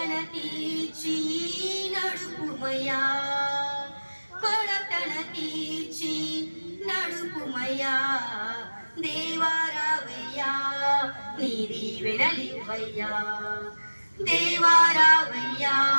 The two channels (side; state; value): both; inverted; correlation -1.00